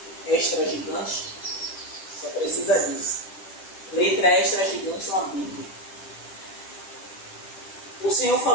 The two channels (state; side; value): late; right; 10 ms